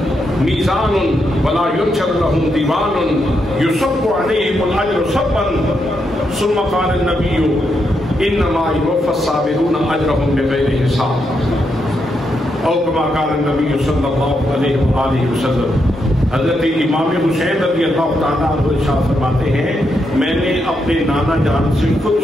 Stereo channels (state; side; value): normal; both; correlation 0.81